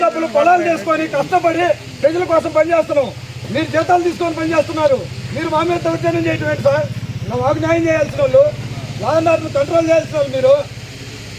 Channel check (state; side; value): identical; both; correlation 1.00